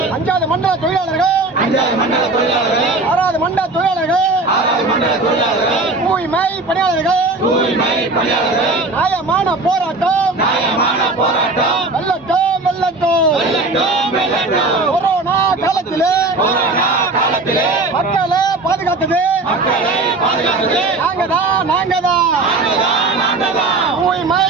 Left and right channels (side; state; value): left; quieter; 3.3 dB